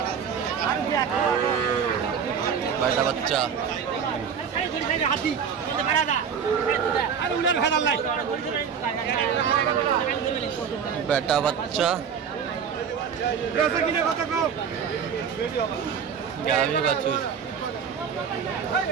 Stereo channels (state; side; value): quieter; left; 7.1 dB